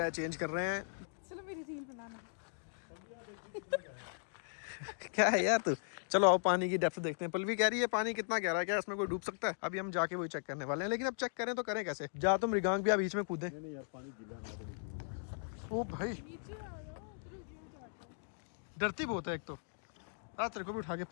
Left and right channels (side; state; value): right; silent; digital silence